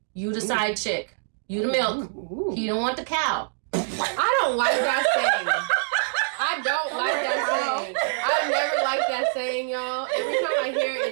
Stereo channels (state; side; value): silent; left; digital silence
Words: You the side chick. You the milk. Ooh. He don't want the cow. I don't like that saying. I don't like that saying. I never like that saying, y'all. Every time I hear